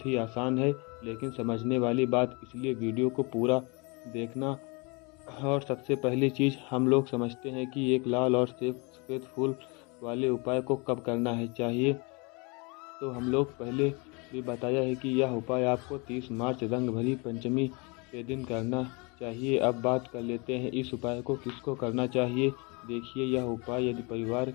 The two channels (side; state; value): right; quieter; 29.8 dB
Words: ही आसान है, लेकिन समझने वाली बात, इसलिए वीडियो को पूरा देखना। और सबसे पहली चीज़ हम लोग समझते हैं कि एक लाल और सफ़ेद फूल वाले उपाय को कब करना है चाहिए। तो हम लोग पहले भी बताया है कि यह उपाय आपको 30 मार्च रंग भरी पंचमी के दिन करना चाहिए। अब बात कर लेते हैं इस उपाय को किसको करना चाहिए। देखिए, यह उपाय यदि परिवार